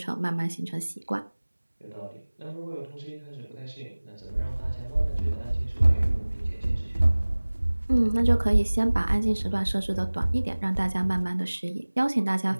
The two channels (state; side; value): inverted; both; correlation -1.00